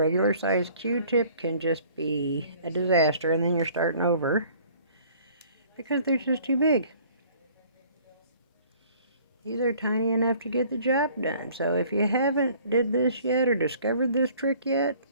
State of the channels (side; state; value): both; inverted; correlation -0.54